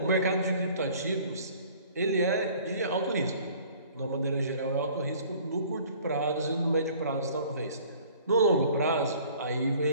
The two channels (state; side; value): inverted; both; correlation -0.52